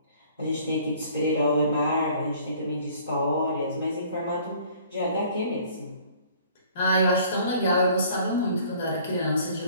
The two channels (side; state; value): both; inverted; correlation -0.55